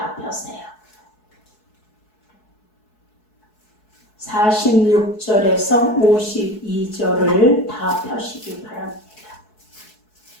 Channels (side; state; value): right; late; 4.7 ms